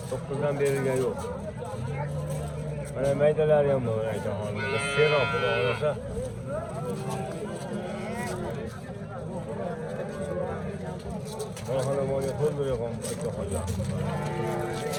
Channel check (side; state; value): both; identical; correlation 1.00